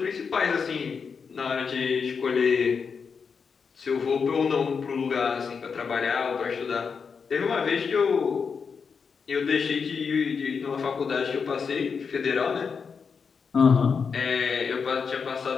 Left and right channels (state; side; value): quieter; right; 5.8 dB